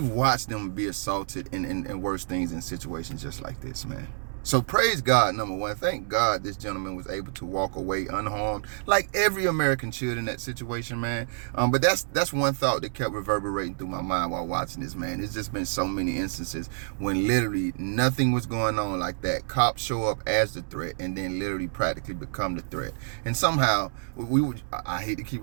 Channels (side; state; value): left; silent; digital silence